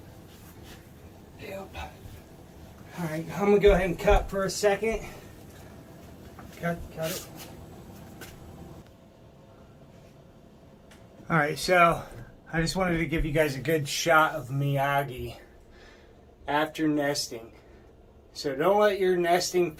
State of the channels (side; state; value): both; identical; correlation 1.00